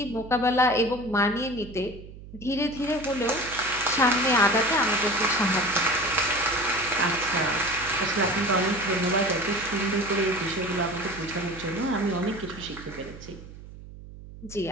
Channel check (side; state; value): right; noise; hum, 16 dB below the sound